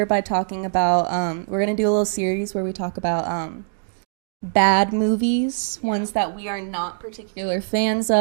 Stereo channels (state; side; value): silent; left; digital silence